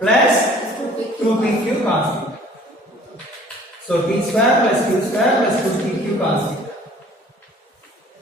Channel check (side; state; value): both; normal; correlation 0.52